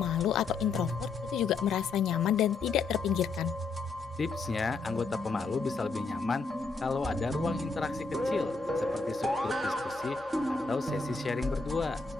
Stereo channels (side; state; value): right; quieter; 4.2 dB